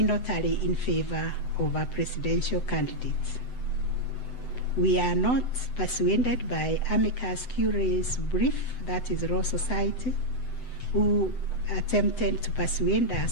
tally in favor of a presidential candidate. We are not persuaded by amicus curiae's brief, that is Law Society, who attempted to persuade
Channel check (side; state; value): right; late; 7.9 ms